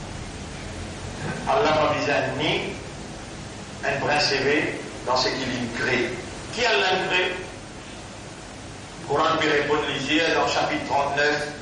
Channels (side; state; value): both; identical; correlation 1.00